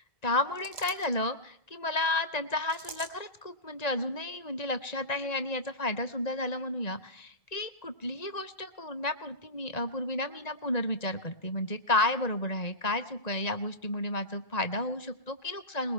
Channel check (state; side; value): late; right; 1.9 ms